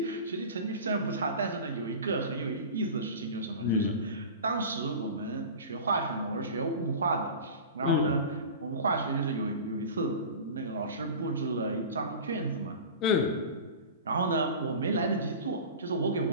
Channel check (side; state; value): both; inverted; correlation -0.34